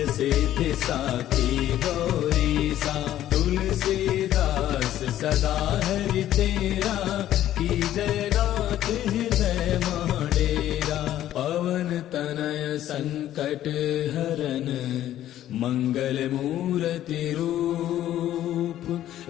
सिद्धि साखी गौरीसा तुलसीदास सदा हरि तेरा की जय नाथ हृदय महाडेरा पवन तनय संकट हरन मंगल मूर्ति रूप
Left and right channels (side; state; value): right; quieter; 12.5 dB